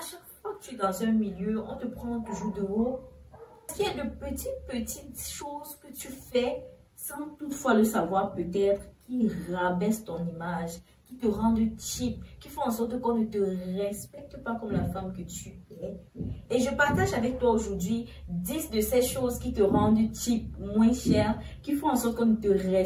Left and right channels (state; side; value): identical; both; correlation 1.00